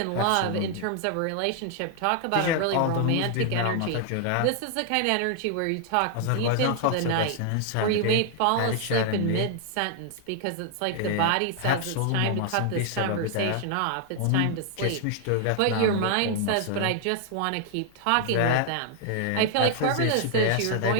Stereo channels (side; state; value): both; different; correlation 0.00